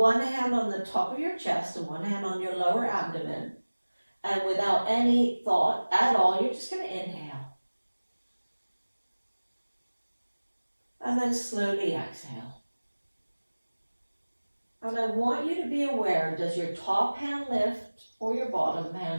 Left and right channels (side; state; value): both; inverted; correlation -1.00